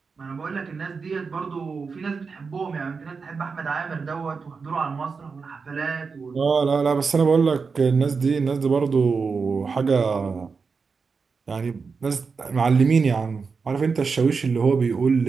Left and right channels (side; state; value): left; quieter; 5.1 dB